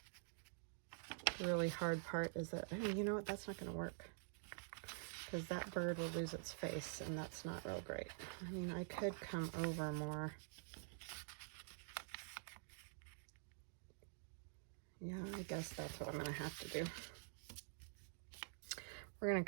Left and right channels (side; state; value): left; silent; digital silence